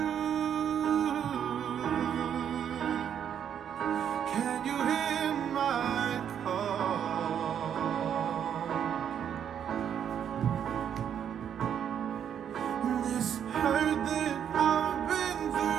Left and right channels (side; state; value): left; quieter; 8.8 dB